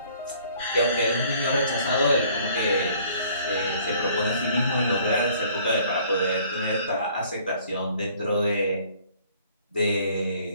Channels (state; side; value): inverted; both; correlation -0.57